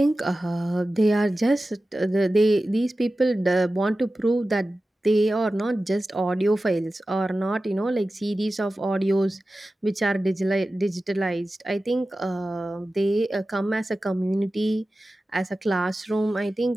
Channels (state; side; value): normal; both; correlation 0.95